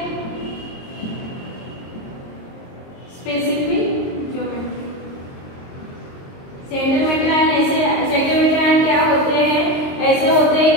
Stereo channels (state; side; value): late; right; 22 ms